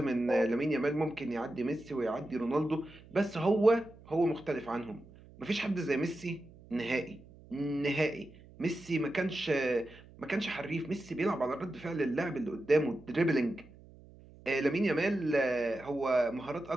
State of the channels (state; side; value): noise; right; hum, 22 dB below the sound